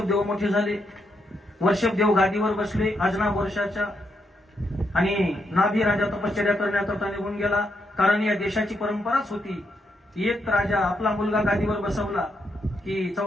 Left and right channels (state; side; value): normal; both; correlation 0.80